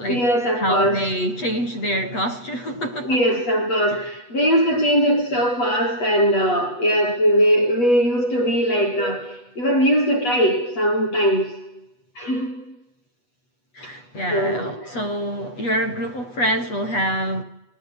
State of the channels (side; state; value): right; late; 8.2 ms